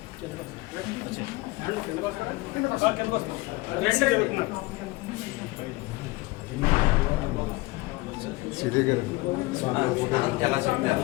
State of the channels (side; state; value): right; quieter; 21.5 dB